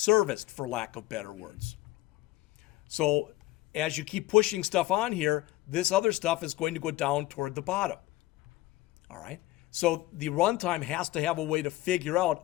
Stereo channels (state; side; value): quieter; right; 17.5 dB